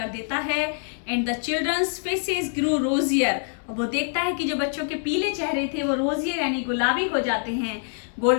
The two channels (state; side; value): silent; right; 58 dB below the other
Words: देता है। And the children's faces grew rosier, और वो देखता है कि जो बच्चों के पीले चेहरे थे वो रोजियर यानी गुलाबी हो जाते हैं